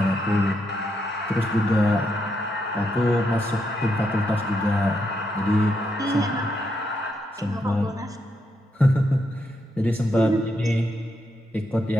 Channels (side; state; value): both; normal; correlation 0.80